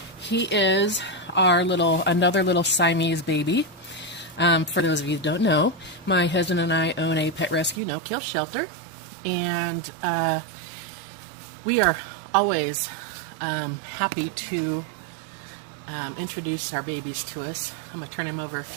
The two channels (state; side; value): drops out; left; at 7.8 s